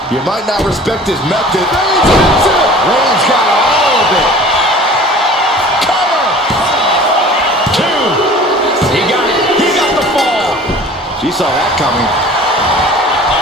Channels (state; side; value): normal; both; correlation 0.44